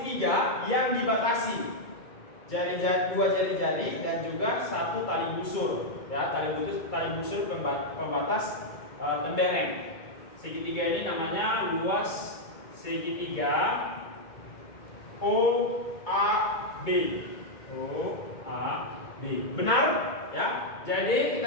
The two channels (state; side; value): late; right; 2.2 ms